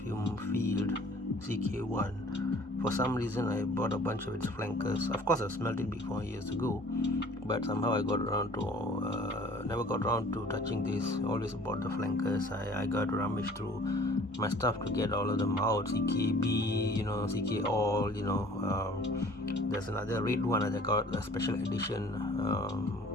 field, CK1. For some reason, I bought a bunch of its flankers. Of course, I smelled it before years ago, but somehow I got around to never got around to touching this. Always bought the flankers. I got to rummage through my stuff to get all of them out. CKB, CK all, there's another red one that I got a special edition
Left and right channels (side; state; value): both; normal; correlation 0.52